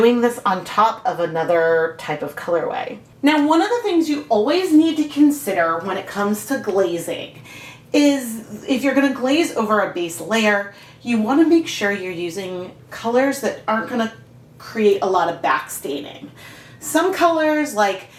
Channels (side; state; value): both; identical; correlation 1.00